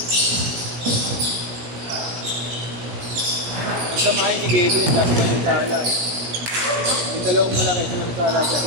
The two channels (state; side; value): late; left; 17 ms